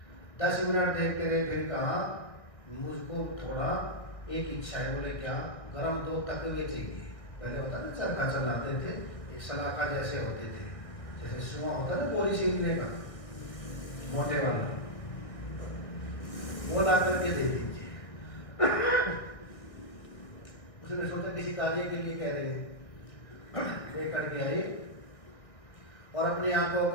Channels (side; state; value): right; late; 1.5 ms